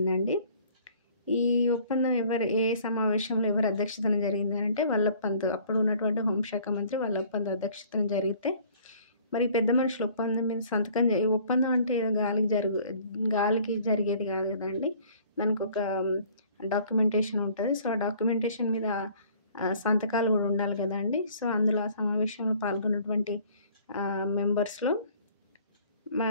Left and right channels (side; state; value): both; inverted; correlation -0.54